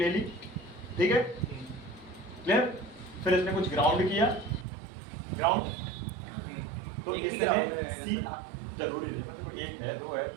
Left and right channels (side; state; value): left; drops out; at 4.7 s